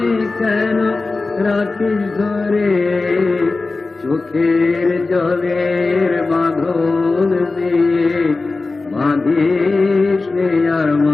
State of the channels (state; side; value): quieter; right; 3.6 dB